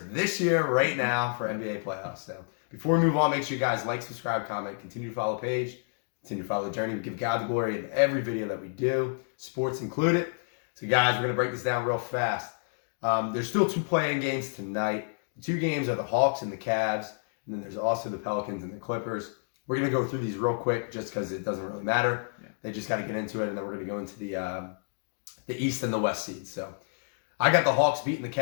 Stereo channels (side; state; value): right; silent; digital silence